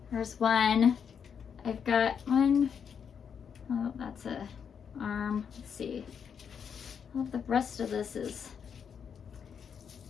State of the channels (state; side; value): quieter; right; 7.2 dB